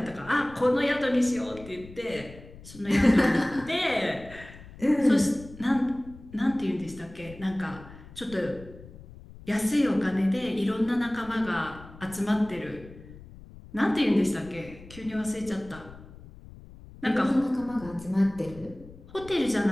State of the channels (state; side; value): noise; left; rumble, 18 dB below the sound